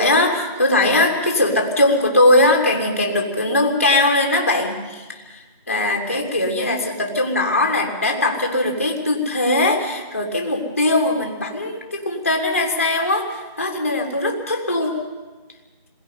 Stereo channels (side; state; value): both; inverted; correlation -0.34